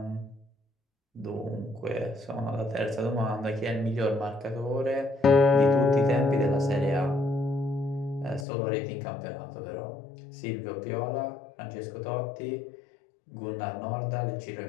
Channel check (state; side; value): drops out; right; at 8.5 s